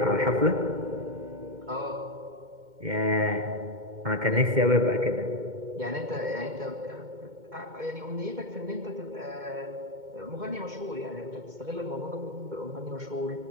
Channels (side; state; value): left; late; 2.1 ms